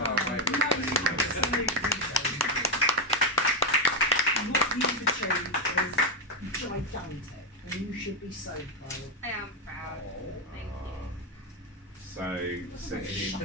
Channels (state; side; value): normal; both; correlation 0.06